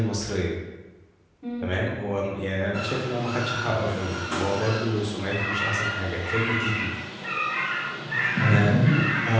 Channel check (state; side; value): identical; both; correlation 1.00